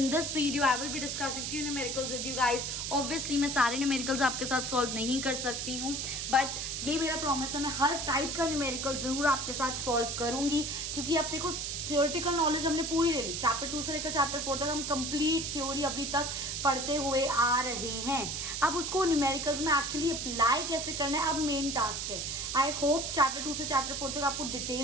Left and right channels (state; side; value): noise; right; hiss, 3 dB below the sound